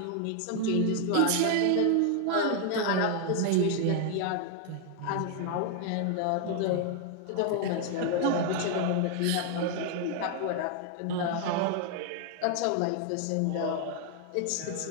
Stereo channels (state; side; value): different; both; correlation 0.00